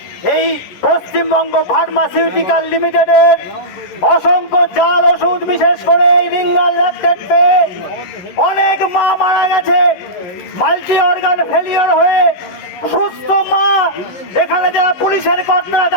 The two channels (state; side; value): late; right; 11 ms